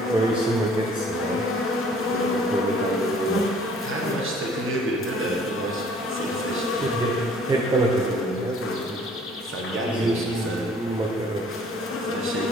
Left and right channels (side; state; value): both; normal; correlation 0.55